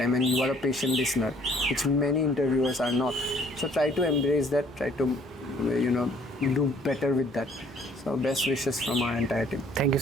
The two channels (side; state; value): both; normal; correlation 0.60